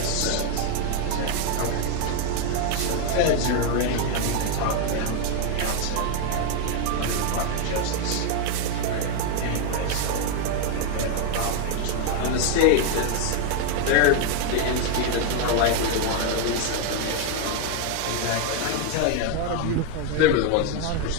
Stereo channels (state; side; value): different; both; correlation 0.01